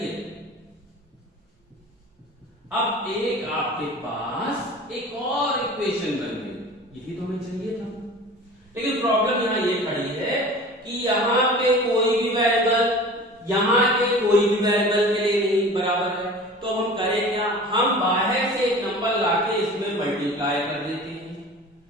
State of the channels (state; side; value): normal; both; correlation 0.39